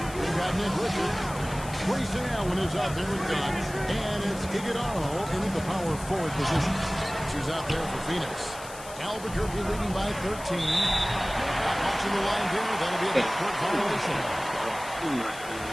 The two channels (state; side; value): noise; left; hiss, 15 dB below the sound